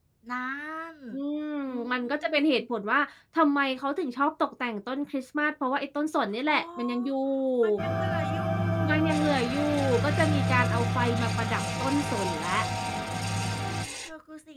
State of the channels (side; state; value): both; identical; correlation 1.00